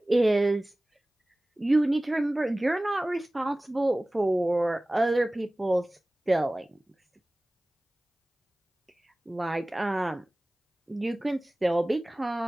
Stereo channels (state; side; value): normal; both; correlation 0.98